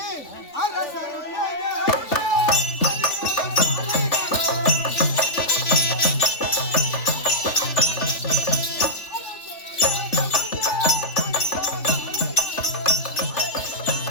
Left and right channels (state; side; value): late; right; 3.4 ms